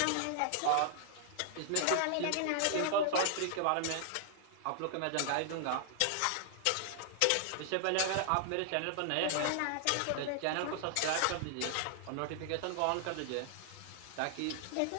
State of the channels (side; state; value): both; different; correlation 0.00